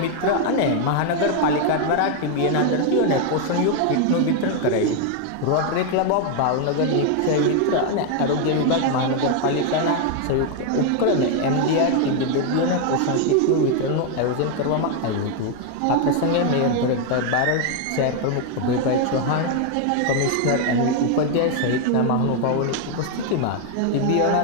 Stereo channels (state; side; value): different; both; correlation 0.01